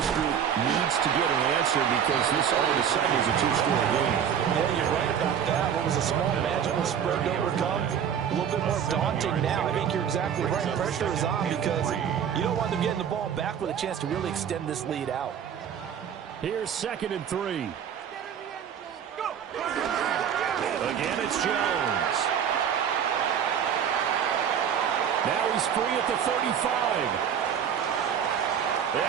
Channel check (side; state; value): left; quieter; 8.4 dB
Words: group needs to get an answer because this all of a sudden is a 2-score game. Yeah, you're right about that. What was a small magical spread to overcome? A little bit more daunting now. I think you're exactly right. Pressure is on because you don't want them getting the ball back with a chance to really extend this lead out. Here's 2nd and 3. Again, it's Jones. Now he's free at the 35.